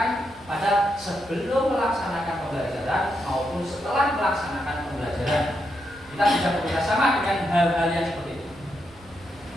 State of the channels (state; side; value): noise; right; rumble, 25 dB below the sound